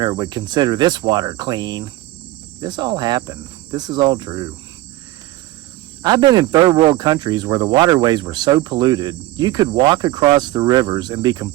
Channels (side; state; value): left; quieter; 16.9 dB